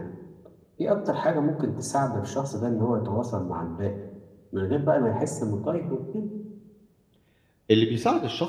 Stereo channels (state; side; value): identical; both; correlation 1.00